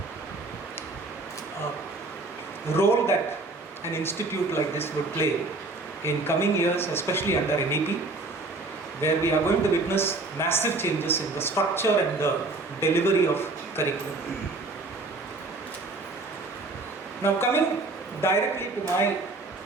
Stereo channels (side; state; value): left; quieter; 3.2 dB